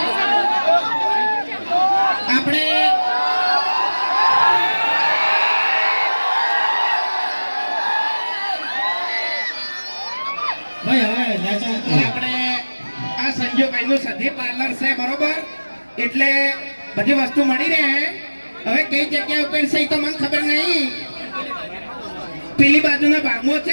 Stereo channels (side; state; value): both; inverted; correlation -1.00